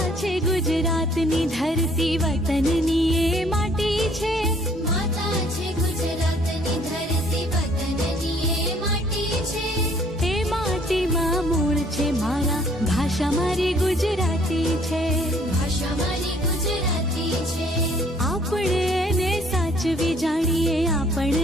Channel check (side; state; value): both; normal; correlation 0.60